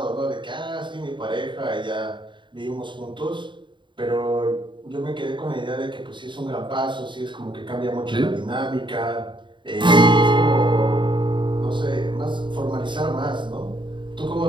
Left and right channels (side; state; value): left; late; 0.23 ms